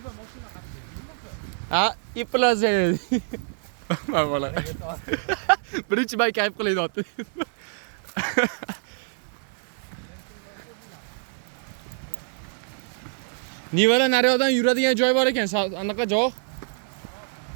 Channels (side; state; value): left; silent; digital silence